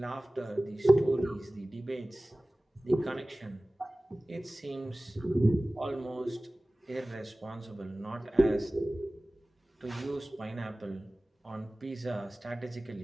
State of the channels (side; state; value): both; normal; correlation 0.98